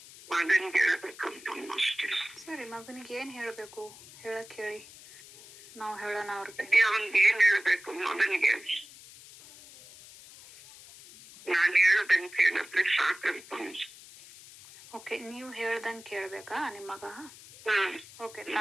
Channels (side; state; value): left; noise; hiss, 19 dB below the sound